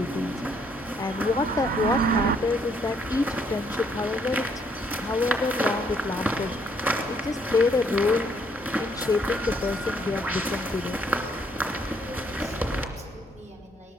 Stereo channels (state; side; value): normal; both; correlation 0.68